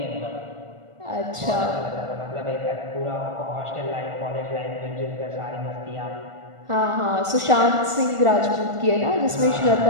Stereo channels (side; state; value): left; late; 1.4 ms